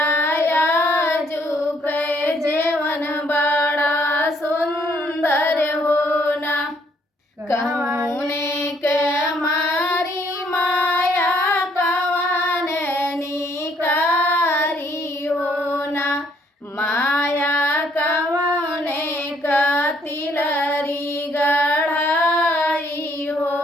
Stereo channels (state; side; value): normal; both; correlation 0.67